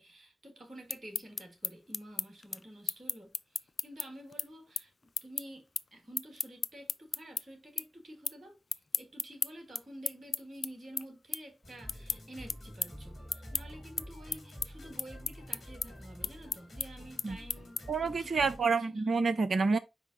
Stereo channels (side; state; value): both; normal; correlation 0.85